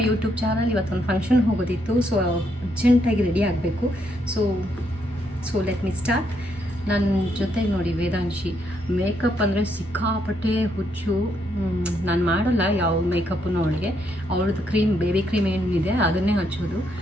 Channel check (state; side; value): normal; both; correlation 0.75